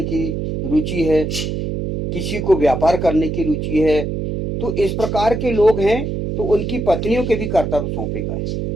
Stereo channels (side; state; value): right; noise; hum, 3 dB below the sound